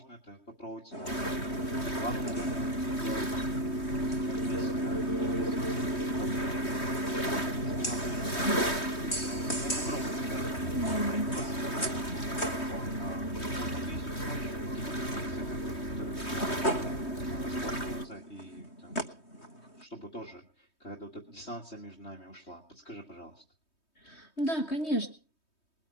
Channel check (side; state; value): right; late; 3.2 ms